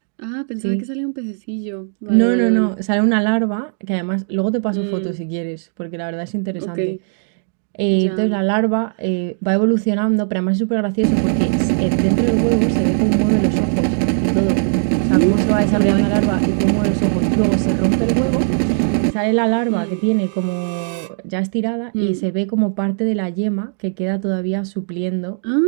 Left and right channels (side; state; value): left; silent; digital silence